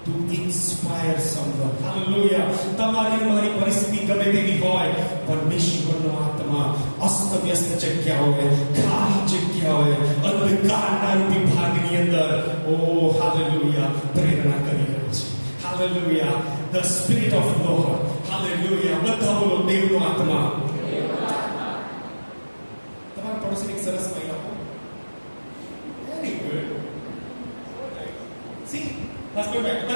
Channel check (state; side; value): inverted; both; correlation -1.00